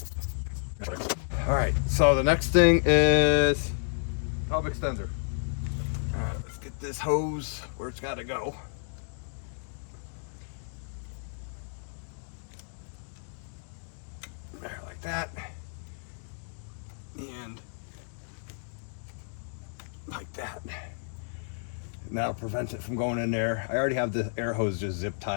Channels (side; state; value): right; silent; digital silence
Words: All right, so the next thing is hub extender. All right, let's get this hose where it's got to go. There, like that. And like that. And that'll prevent it from going in there. I already have the air hose just zip